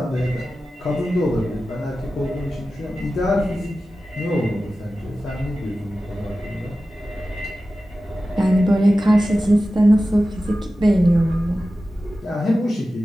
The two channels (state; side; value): normal; both; correlation 0.94